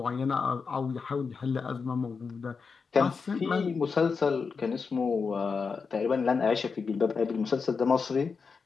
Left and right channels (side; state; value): right; quieter; 5.2 dB